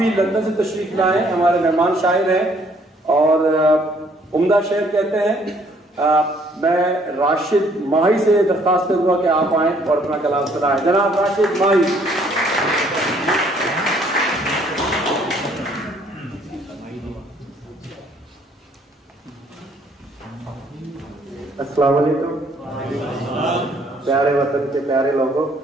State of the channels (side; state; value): both; normal; correlation 0.63